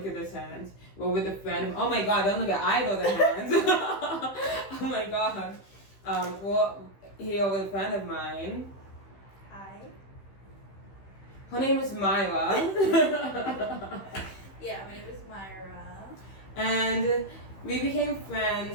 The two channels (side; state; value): right; late; 15 ms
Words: at this hand. We're with a friend. Oh my god, don't look at either of the hands. Oh my god. We're here with a friend of mine. Hi. Her name is Mayra. Yeah, my name is Mayra. And we became